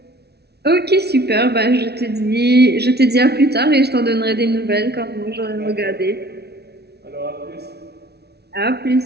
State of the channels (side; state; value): left; late; 0.48 ms